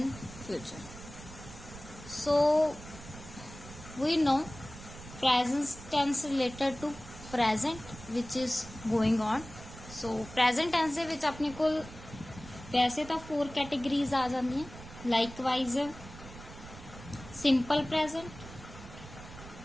future. So we know present tense related to present which is going on. So present tense ਦੇ ਵਿੱਚ ਆਪਣੇ ਕੋਲ वैसे तो 4 categories आ जाती हैं। Likewise simple present,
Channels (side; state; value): right; noise; rumble, 15 dB below the sound